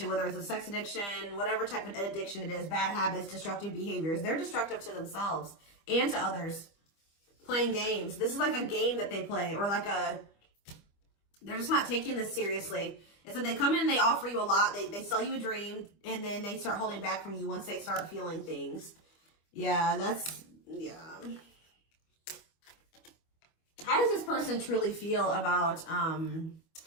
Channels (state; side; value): late; right; 25 ms